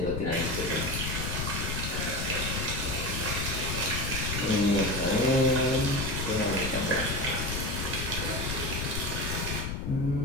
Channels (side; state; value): left; noise; rumble, 3 dB below the sound